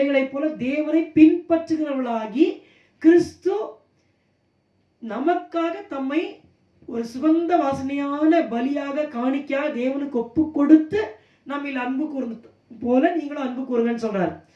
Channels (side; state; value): both; identical; correlation 1.00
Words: போல தேவனை பின்பற்றுகிறவர்களாகி, கிறிஸ்து நமக்காக தம்மை ஒரு சுகந்த வாசனையான பலியாக காணிக்கையாக தேவனுக்கு ஒப்பு கொடுத்து நம்மில் அன்பு கூர்ந்து போல நீங்களும் அன்பு கூறுங்கன்னு சொல்றாரு.